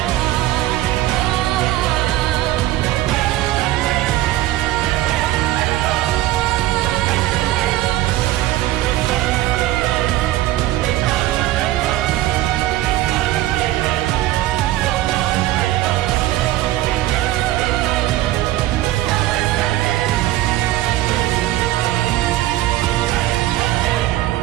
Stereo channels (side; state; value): left; quieter; 15.3 dB